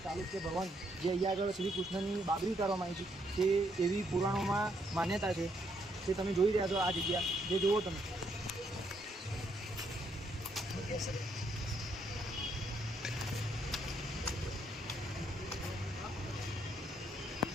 ચાલુક્ય ભવન જે અહીં આગળ શ્રી કૃષ્ણની બાબરી ઉતારવામાં આવી છે, તે એવી પુરાણોમાં માન્યતા છે। તે તમે જોઈ રહ્યા છો આ જગ્યા, જે જુઓ તમે।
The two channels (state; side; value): normal; both; correlation 0.73